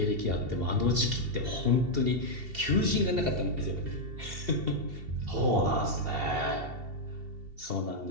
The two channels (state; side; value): late; left; 2.7 ms